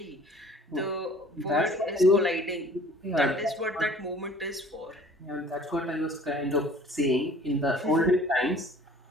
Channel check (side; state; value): both; normal; correlation 0.50